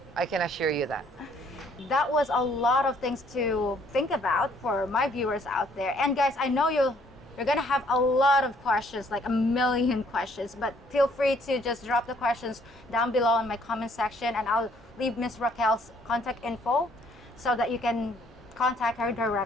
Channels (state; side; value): normal; both; correlation 0.64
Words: I can assure you that. That was a lot of things to think about for my viewers out there. And guys, I know you're gonna have a lot of questions, like a million questions, but feel free to just drop the questions down below in my comment section, and I'll leave Miss Raquel's contact info so that you can contact her